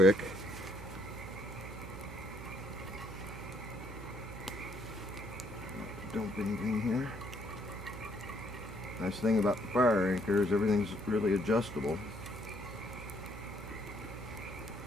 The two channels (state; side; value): noise; right; hum, 11 dB below the sound